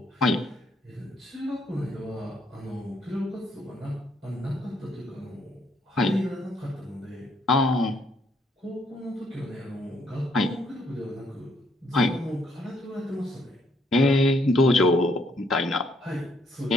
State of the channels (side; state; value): both; normal; correlation 0.70